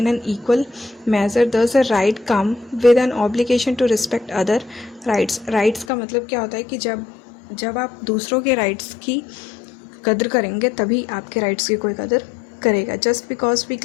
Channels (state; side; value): drops out; right; at 5.9 s